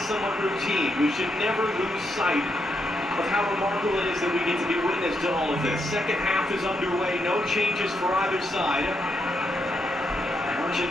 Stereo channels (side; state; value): both; normal; correlation 0.80